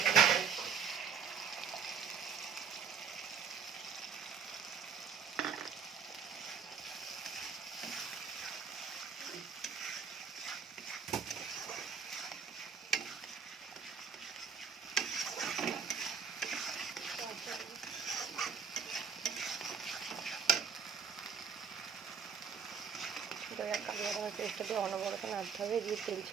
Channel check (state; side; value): quieter; left; 6.2 dB